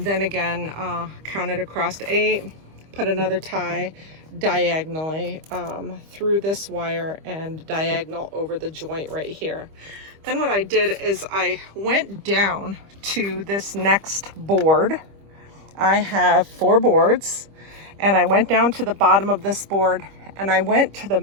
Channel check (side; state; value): left; late; 25 ms